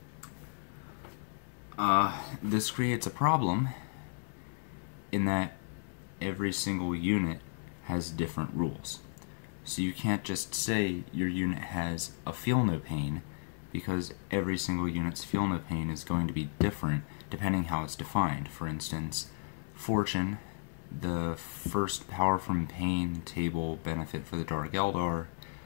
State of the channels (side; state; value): right; silent; 55 dB below the other